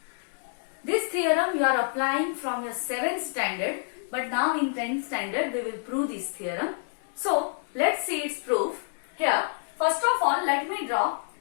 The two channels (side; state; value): right; silent; digital silence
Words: This theorem you are applying from your 7th standard, but now in 10th standard we will prove this theorem. So let's see its proof. Here, first of all, let me draw